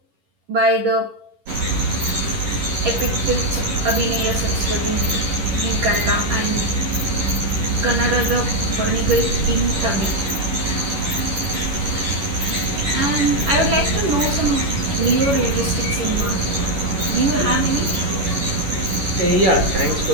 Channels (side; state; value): left; late; 11 ms